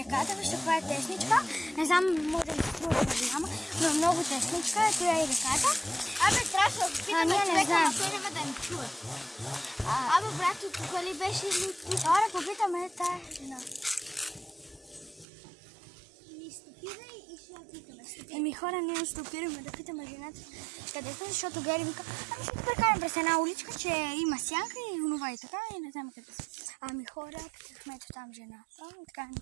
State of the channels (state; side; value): drops out; left; at 15.2 s